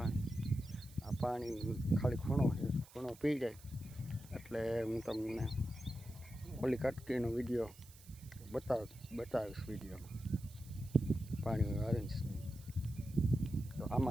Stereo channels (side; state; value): right; noise; hiss, 21 dB below the sound